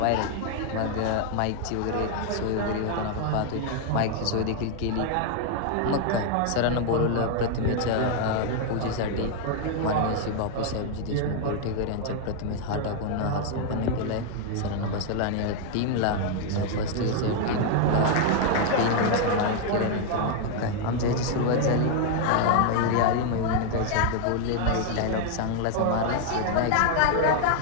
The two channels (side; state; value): both; different; correlation 0.00